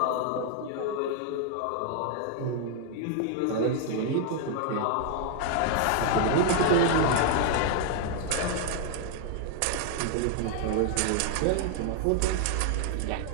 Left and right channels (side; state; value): both; different; correlation 0.00